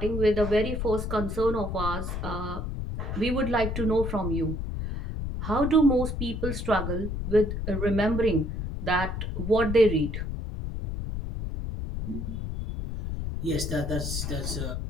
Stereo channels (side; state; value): left; noise; rumble, 4 dB below the sound